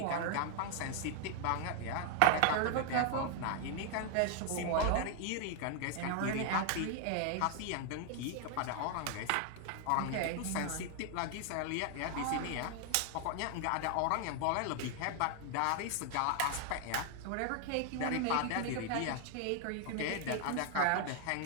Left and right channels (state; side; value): different; both; correlation 0.00